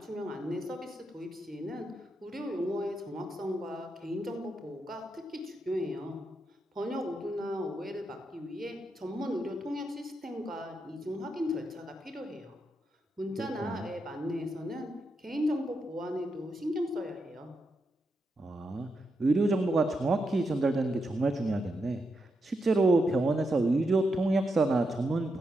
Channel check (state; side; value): normal; both; correlation 0.84